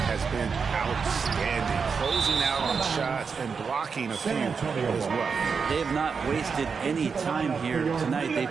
has been outstanding, closing out on shots and blocking a few as well. They have not wasted any time here tonight.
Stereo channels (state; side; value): quieter; left; 5.6 dB